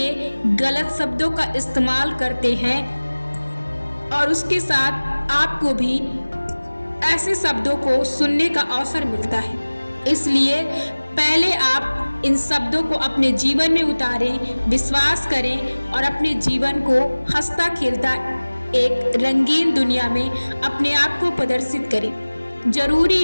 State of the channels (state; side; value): inverted; both; correlation -1.00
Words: गलत शब्दों का इस्तेमाल करते हैं और उसके साथ आपको भी ऐसे शब्दों को सुनने का अवसर मिलता है। इसलिए पहले आप इन शब्दों को अपने जीवन में उतारें, विश्वास करें और अपने जीवन को हंसता खेलता एक रंगीन दुनिया में अपने आप को प्रदर्शित करें। जरूरी